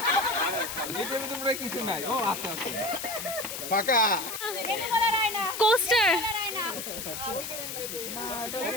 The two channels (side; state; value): left; noise; hiss, 6 dB below the sound